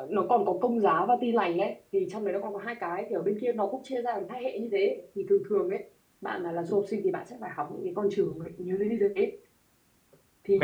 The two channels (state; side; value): identical; both; correlation 1.00